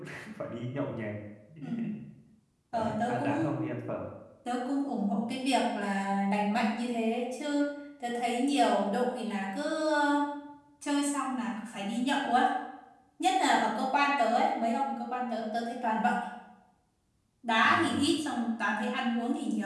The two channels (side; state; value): both; identical; correlation 1.00